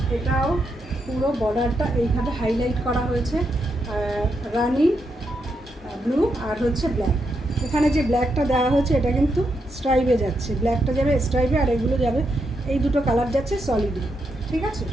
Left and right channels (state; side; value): normal; both; correlation 0.82